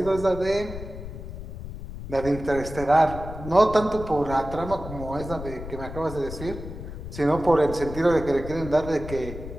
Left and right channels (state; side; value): noise; left; rumble, 10 dB below the sound